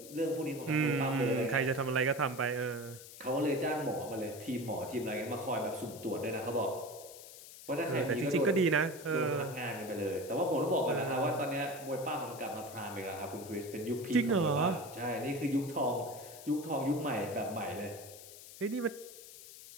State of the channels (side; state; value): left; noise; hiss, 16 dB below the sound